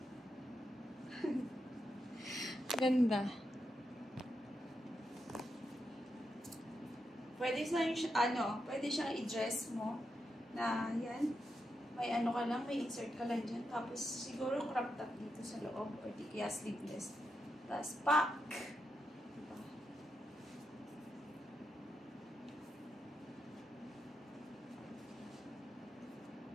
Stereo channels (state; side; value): normal; both; correlation 0.85